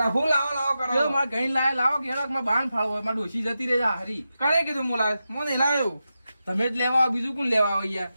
હું લાવો કરો મારા ગઈ લાવે લાવો કે હેડો મારા બાણ ફાળવો મારા ડોસી જતી રહે હારી. કરે કીધું હું લાવે હું નહીં લાવ્યો. તમે જ લેવા આવો, બીજું કોણ લેવા આવે યાર?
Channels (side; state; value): both; inverted; correlation -0.90